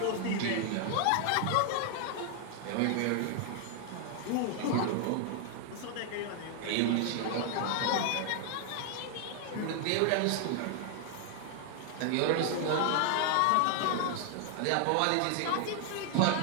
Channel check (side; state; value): both; different; correlation 0.00